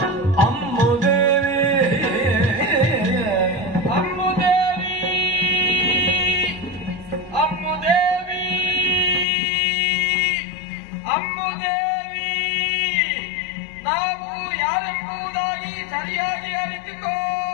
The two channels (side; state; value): right; drops out; at 9.2 s